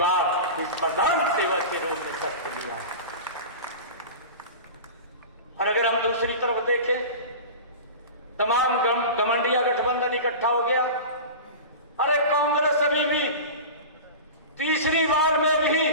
इस प्रधान सेवक के रूप में शपथ लिया। और अगर हम दूसरी तरफ देखें, तमाम घमंडिया गठबंधन इकट्ठा हो गया। अरे कांग्रेस अभी भी तीसरी बार में भी,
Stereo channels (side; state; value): both; inverted; correlation -0.31